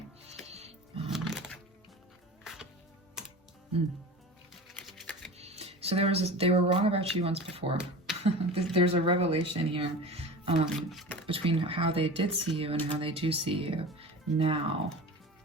So they were wrong about you once before. There's a revelation here. Between how they did see you and how they do see you now.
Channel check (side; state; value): both; normal; correlation 0.34